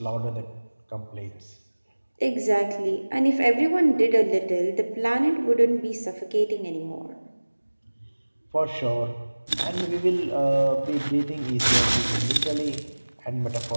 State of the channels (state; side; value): inverted; both; correlation -1.00